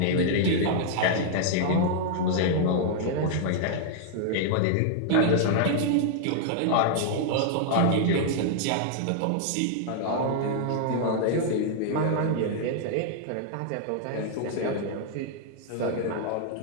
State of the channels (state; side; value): different; both; correlation -0.01